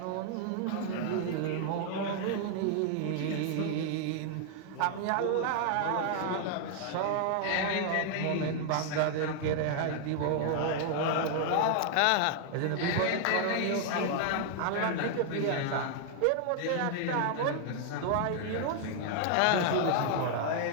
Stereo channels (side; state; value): both; different; correlation 0.00